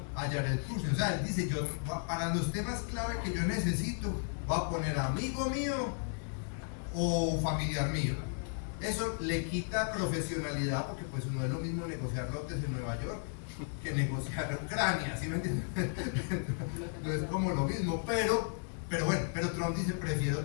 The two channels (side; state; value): right; silent; 55 dB below the other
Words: a Jared Kushner. O sea, él dice, yo para los temas clave que yo necesito voy a poner amigo mío o familiar mío. Eso le quita profesionalidad, porque pues no es lo mismo negociar lotes en Nueva York que negociar Ucrania, ¿sí me entienden? No es como lo mismo, pero bueno, pero Trump dice, prefiero